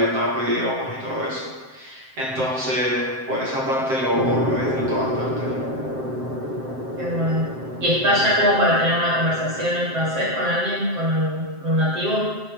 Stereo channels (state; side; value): late; left; 7.7 ms